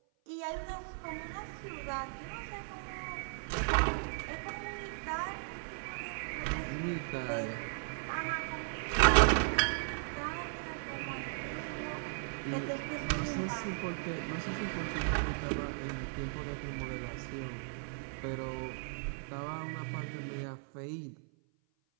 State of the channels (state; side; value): silent; left; 53 dB below the other